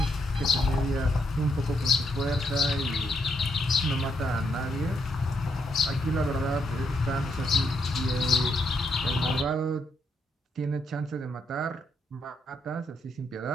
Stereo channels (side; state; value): both; normal; correlation 0.77